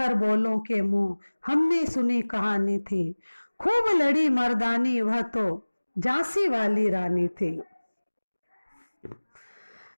बोलों के मुंह हमने सुनी कहानी थी। खूब लड़ी मर्दानी वह तो झांसी वाली रानी थी।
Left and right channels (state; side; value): inverted; both; correlation -1.00